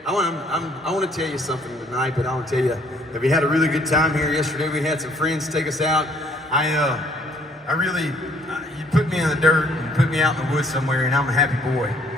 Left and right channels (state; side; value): normal; both; correlation 0.62